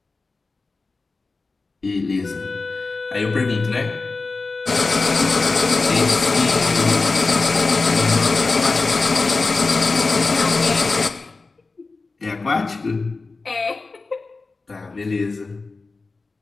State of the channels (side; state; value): right; quieter; 3.8 dB